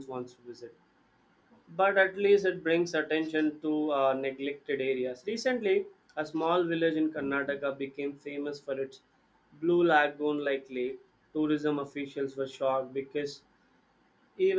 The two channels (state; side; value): identical; both; correlation 1.00